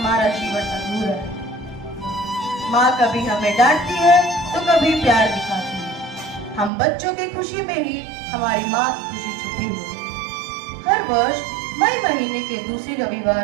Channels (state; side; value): drops out; left; at 6.7 s